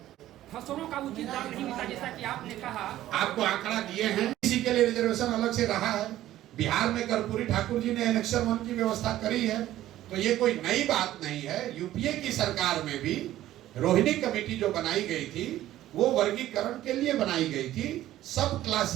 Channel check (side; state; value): left; quieter; 13.9 dB